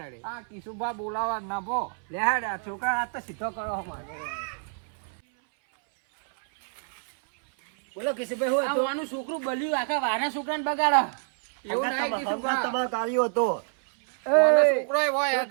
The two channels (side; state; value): left; silent; 60 dB below the other